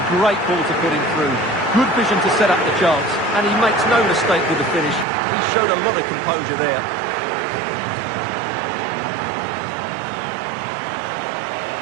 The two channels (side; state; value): left; drops out; at 5.1 s